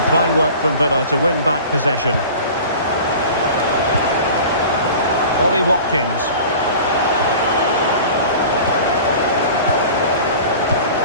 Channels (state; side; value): inverted; both; correlation -0.40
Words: Fine work from Villa to win back possession. Ollie Watkins.